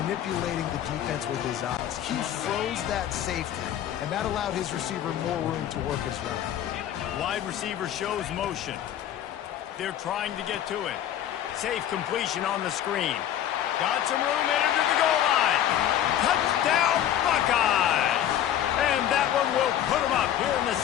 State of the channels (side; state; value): right; quieter; 11.0 dB